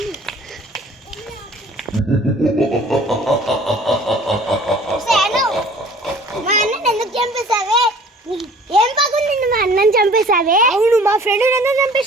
మా అన్నని ఎందుకు చంపేశావే? ఏం పగుంది మా అన్నని చంపేశావే? అవును, మా ఫ్రెండ్ ఎందుకు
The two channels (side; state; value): both; normal; correlation 0.50